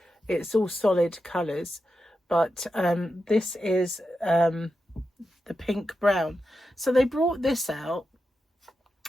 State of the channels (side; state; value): both; normal; correlation 0.89